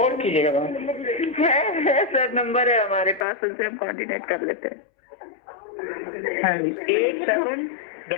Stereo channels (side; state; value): right; drops out; at 3.2 s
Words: कीजिएगा मैम। है सर, नंबर है हमारे पास, उनसे हम कोऑर्डिनेट कर लेते हैं।